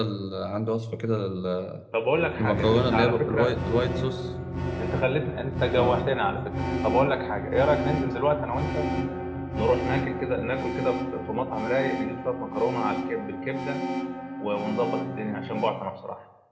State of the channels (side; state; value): both; identical; correlation 1.00